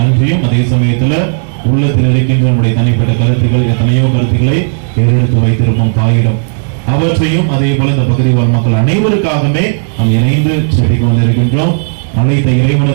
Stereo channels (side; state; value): left; silent; digital silence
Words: அதே சமயத்துல உள்ளத்தில் இருக்கின்ற நம்முடைய தனிப்பட்ட கருத்துக்கள், எத்தனையோ கருத்துக்களை ஏறெடுத்து வைத்திருப்போம் தாயிடம், அவற்றையும் அதே போல இந்த பகுதி வாழ் மக்கள் அனைவருக்காகவே நாம் இணைந்து செடிக்கு வந்திருக்கின்றோம். அனைத்த